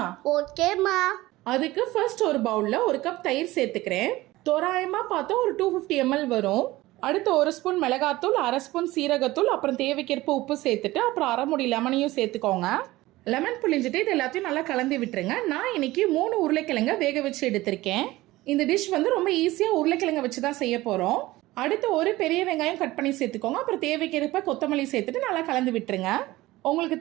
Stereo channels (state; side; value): quieter; left; 18.2 dB